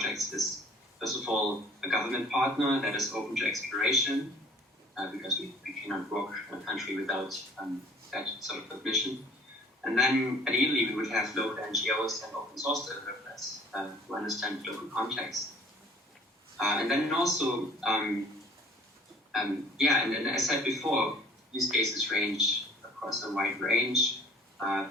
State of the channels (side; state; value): both; normal; correlation 0.52